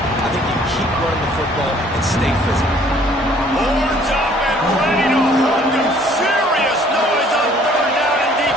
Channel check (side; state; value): both; normal; correlation 0.58